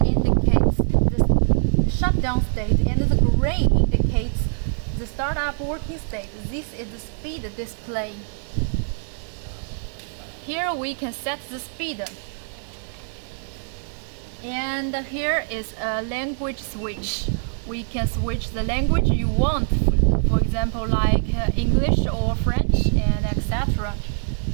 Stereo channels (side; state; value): left; silent; 63 dB below the other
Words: indicates the shutdown state and the green indicates the startup working state. This is the speed display. Here we can set the speed. And here is a language switch. We can switch the language you want, for example, like English or French, and etc.